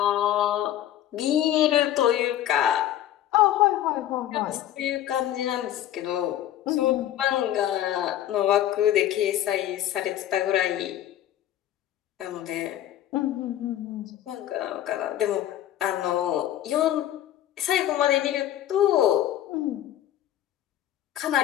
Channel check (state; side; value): quieter; right; 12.2 dB